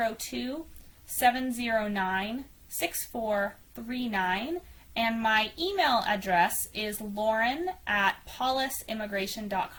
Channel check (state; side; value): identical; both; correlation 1.00